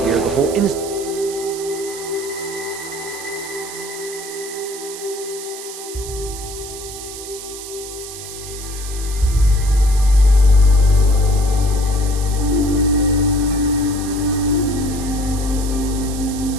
hear the whole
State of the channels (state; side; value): noise; right; hiss, 11 dB below the sound